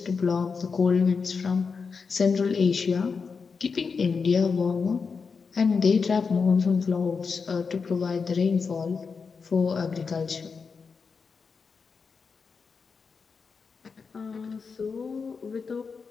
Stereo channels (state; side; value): quieter; right; 5.2 dB